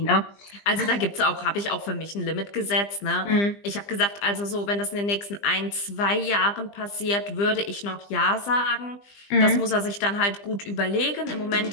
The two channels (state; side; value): late; right; 20 ms